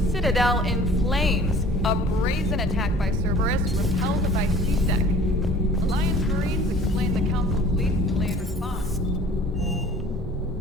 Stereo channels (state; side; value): normal; both; correlation 0.48